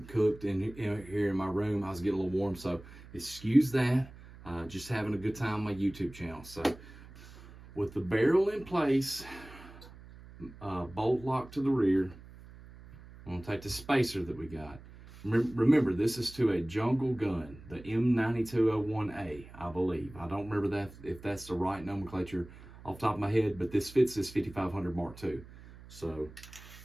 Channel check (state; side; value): noise; right; hum, 18 dB below the sound